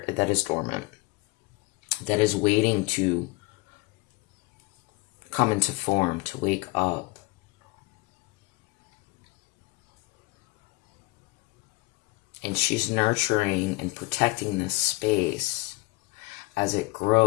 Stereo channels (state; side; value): quieter; right; 23.3 dB